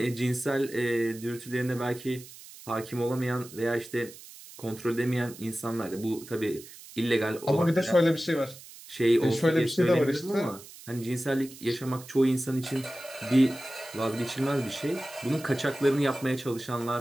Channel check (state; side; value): noise; right; hiss, 17 dB below the sound